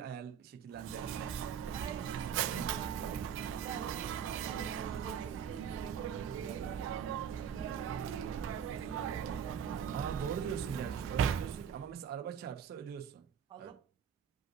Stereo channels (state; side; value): quieter; left; 8.1 dB